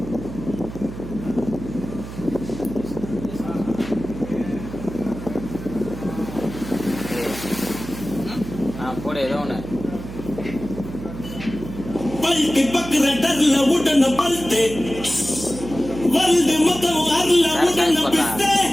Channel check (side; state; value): right; noise; hum, 11 dB below the sound